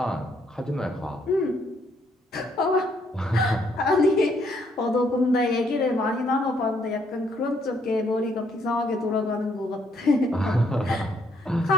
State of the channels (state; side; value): normal; both; correlation 0.70